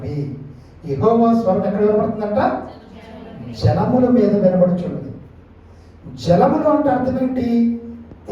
యెహోవా స్వరం ఎక్కడ వినబడుతుందంట? జలముల మీద వినబడుచున్నది. జలములు అంటే అర్థం ఏంటి?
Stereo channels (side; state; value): both; identical; correlation 1.00